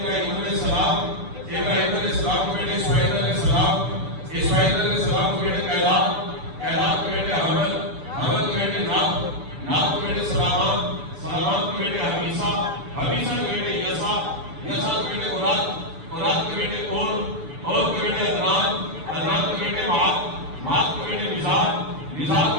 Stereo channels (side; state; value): left; late; 6.9 ms